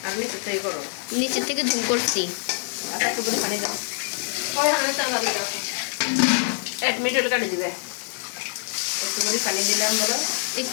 নিচের থেকে ঝুম করছি।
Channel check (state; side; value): silent; right; 62 dB below the other